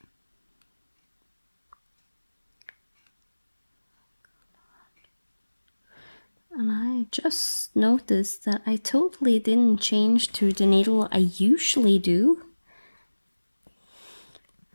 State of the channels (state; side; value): inverted; both; correlation -1.00